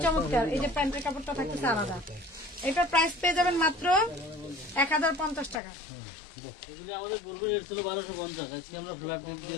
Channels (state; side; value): drops out; right; at 5.6 s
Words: চমৎকার। এই যে প্যান্টের কাপড়টা থাকতেছে আলাদা। এটার প্রাইস পেয়ে যাবেন মাত্র 1050 টাকা। আমাদের পূর্বে রেট ছিল 1250, আজকে আমরা ফ্ল্যাট রেট